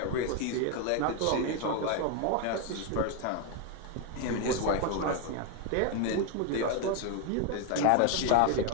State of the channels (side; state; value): both; different; correlation 0.00